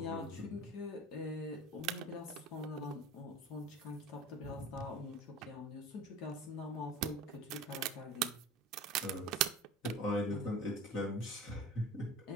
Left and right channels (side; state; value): both; normal; correlation 0.39